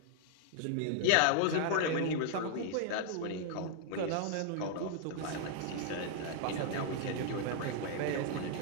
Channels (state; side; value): different; both; correlation -0.01